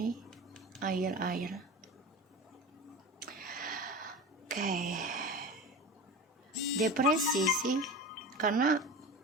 air. Oke. Depresi sih, karena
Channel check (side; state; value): both; normal; correlation 0.30